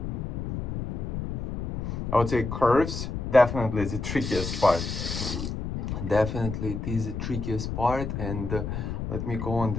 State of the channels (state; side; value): noise; left; rumble, 4 dB below the sound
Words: I would say curves definitely is the trickiest part. Definitely it is the trickiest part. And let me go on